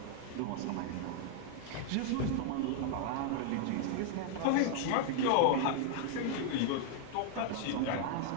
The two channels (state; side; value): different; both; correlation -0.01